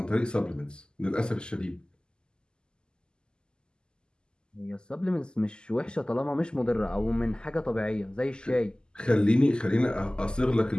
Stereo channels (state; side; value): late; right; 0.047 ms